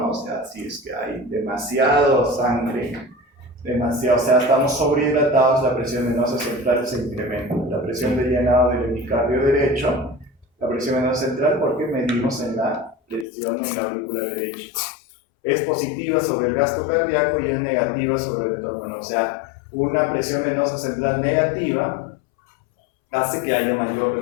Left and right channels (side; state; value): right; drops out; at 13.2 s